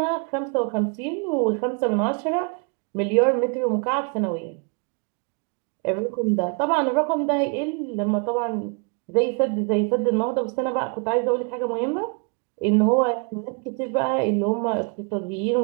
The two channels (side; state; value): left; quieter; 35.7 dB